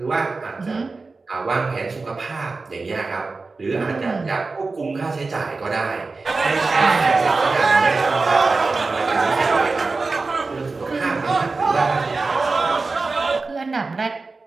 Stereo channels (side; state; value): left; quieter; 3.9 dB